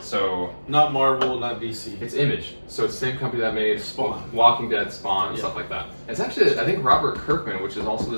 Not Marvel, not DC. it's Image. So it's the same company that made Spawn. Walking Dead, Spawn, and Yeah. stuff like that. It's actually, I think, Robert Kirkman, which is also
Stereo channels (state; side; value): inverted; both; correlation -1.00